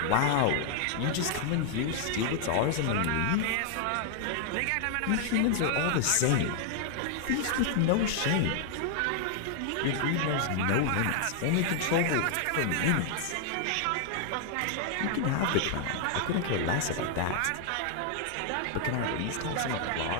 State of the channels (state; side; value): different; both; correlation 0.00